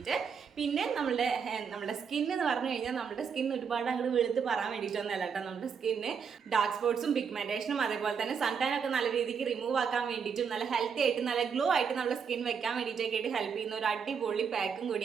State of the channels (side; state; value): left; quieter; 6.5 dB